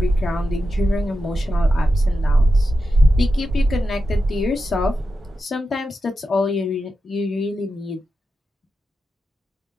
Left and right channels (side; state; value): both; normal; correlation 0.90